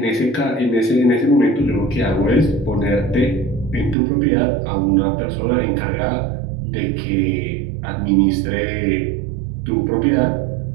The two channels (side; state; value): left; drops out; at 4.0 s